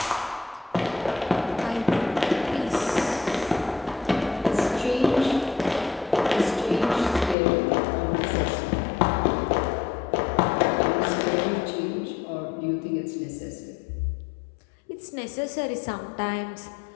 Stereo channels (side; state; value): right; drops out; at 7.4 s